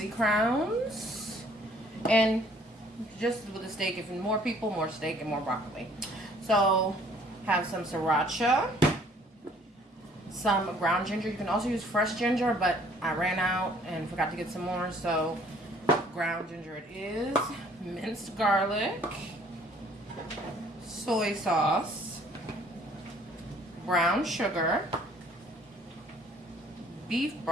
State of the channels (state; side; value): normal; both; correlation 0.59